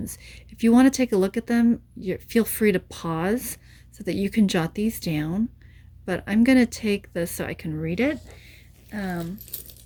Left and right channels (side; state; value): both; identical; correlation 1.00